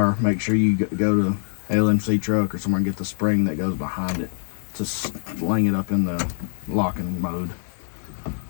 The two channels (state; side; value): silent; right; digital silence